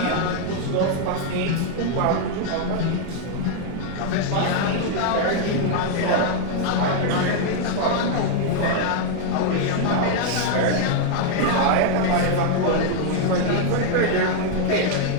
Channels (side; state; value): both; different; correlation 0.00